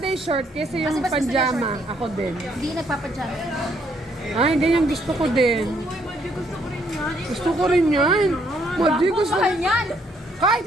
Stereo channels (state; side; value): normal; both; correlation 0.70